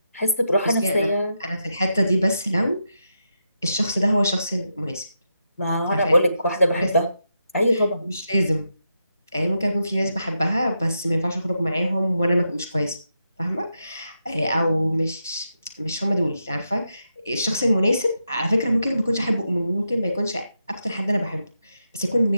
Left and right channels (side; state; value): both; inverted; correlation -0.85